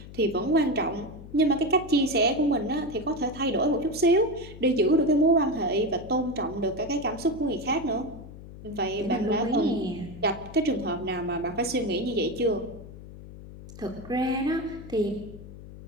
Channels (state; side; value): noise; left; hum, 15 dB below the sound